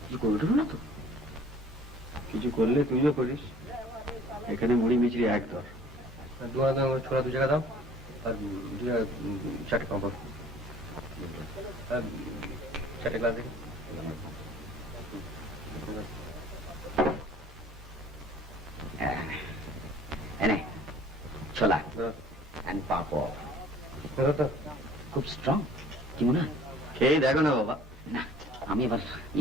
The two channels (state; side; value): normal; both; correlation 0.51